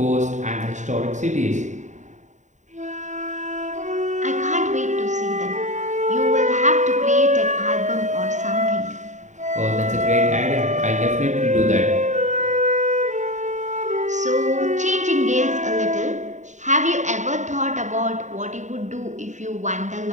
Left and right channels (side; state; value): left; late; 0.35 ms